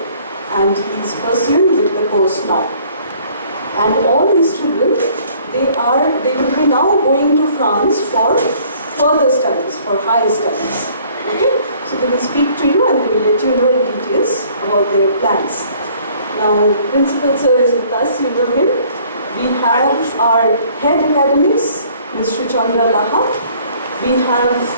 and he's pursuing with the course now. And all these children, they will be now going to France for further studies, for higher studies. Okay? So they will speak to you and they will let you know in details about their plans. Now, Principal Sir is with us, you know him. We have our head academics, Ms. Chandra Laha. We have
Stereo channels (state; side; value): inverted; both; correlation -0.57